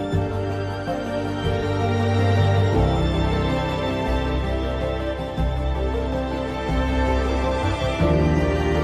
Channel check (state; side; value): identical; both; correlation 1.00